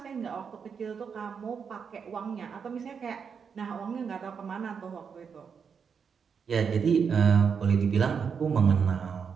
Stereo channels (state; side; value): quieter; left; 6.4 dB